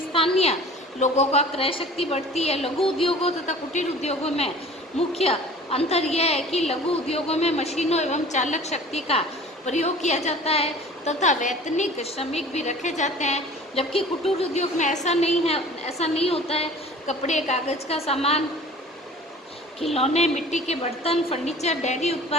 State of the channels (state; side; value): normal; both; correlation 0.45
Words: स्थानीय लोगों का क्रय शक्ति बढ़ती है। लघु उद्योगों तथा कुटीर उद्योगों में मुख्य अंतर यह है कि लघु उद्योगों में मशीनों एवं चालक शक्ति का प्रयोग किया जाता है तथा वैतनिक श्रमिक भी रखे जाते हैं, जबकि कुटीर उद्योग में ऐसा नहीं होता है। कपड़े, कागज का सामान, खिलौने, मिट्टी के बर्तन, फर्नीचर, डेयरी